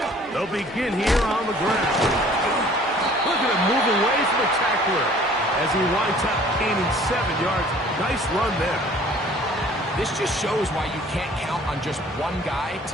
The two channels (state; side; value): normal; both; correlation 0.52